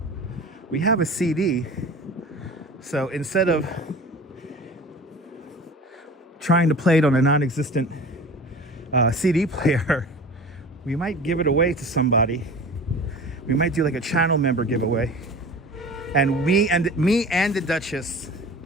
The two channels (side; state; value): both; normal; correlation 0.39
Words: we have a CD. So instead of trying to play it on a non-existent CD player, we might give it away to somebody. We might do like a channel member giveaway, and me and the Duchess